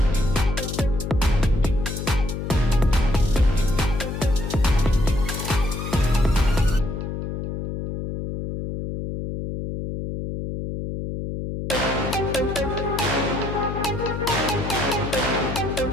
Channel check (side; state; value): left; noise; hum, 5 dB below the sound